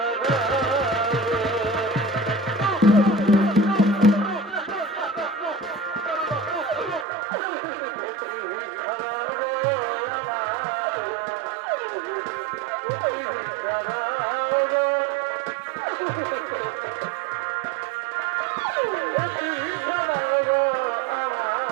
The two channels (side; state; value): left; drops out; at 7.1 s